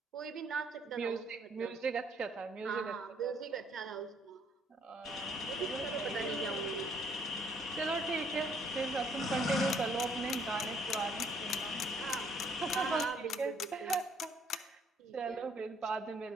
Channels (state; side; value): normal; both; correlation 0.65